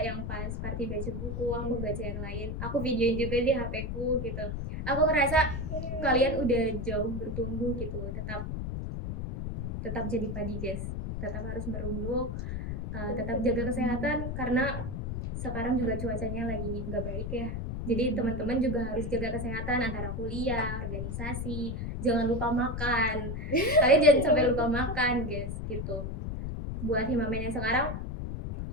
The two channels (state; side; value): noise; left; rumble, 4 dB below the sound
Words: yang pas party baca buku, aku baca yang lain, aku videoin juga di HP ku gitu. Aku ngerasa kalian udah jauh bertumbuh gitu, tetap jadi padi guys, tetap harus merunduk, tetap jaga kesehatan karena sekarang juga cuacanya lagi nggak baik ya. Jadi teman-teman juga harus jaga kesehatan antara kuliah, organisasi, jangan lupa makan. Kalian jangan sampai lupa makan, guys, gitu. Buat Himamen yang sekarang,